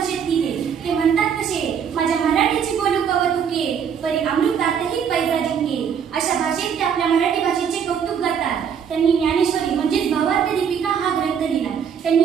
दिले. ते म्हणतात कसे, माझ्या मराठीची बोलू कवतुके परी अमृतातही पैजा जिंके. अशा भाषेत ते आपल्या मराठी भाषेचे कौतुक करतात. त्यांनी ज्ञानेश्वरी म्हणजेच भावार्थ दीपिका हा ग्रंथ लिहिला. त्यांनी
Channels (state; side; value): quieter; left; 7.5 dB